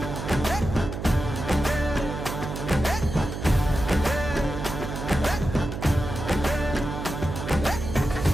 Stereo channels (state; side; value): noise; right; hum, 6 dB below the sound